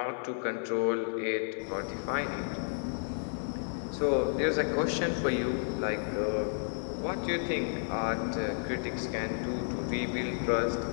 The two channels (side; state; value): right; silent; 56 dB below the other